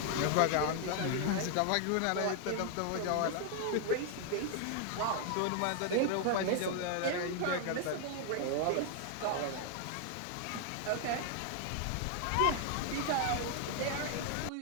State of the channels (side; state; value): both; different; correlation 0.00